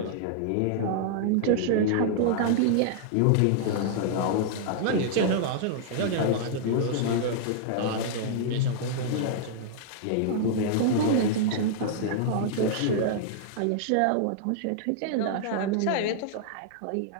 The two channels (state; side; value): different; both; correlation -0.01